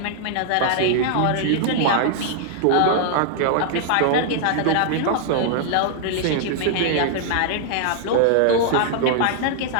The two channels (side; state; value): both; different; correlation 0.00